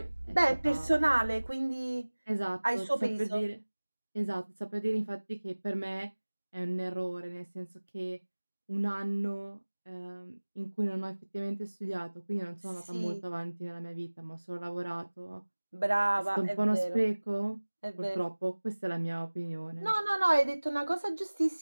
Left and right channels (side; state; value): both; inverted; correlation -1.00